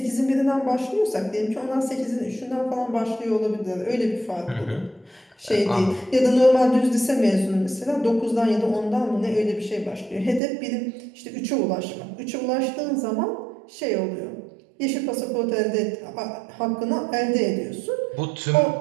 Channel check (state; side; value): drops out; left; at 10.4 s